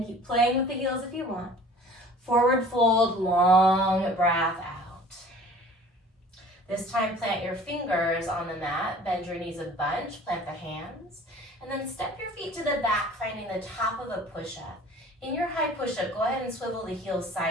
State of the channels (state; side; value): normal; both; correlation 0.47